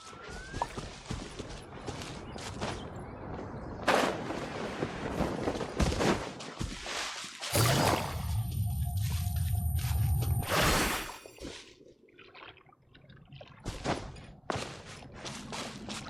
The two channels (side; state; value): both; identical; correlation 1.00